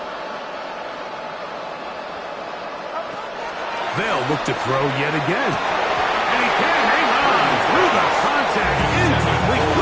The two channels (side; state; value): both; identical; correlation 1.00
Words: They'll look to throw yet again. And he can hang on through the contact. Incomplete.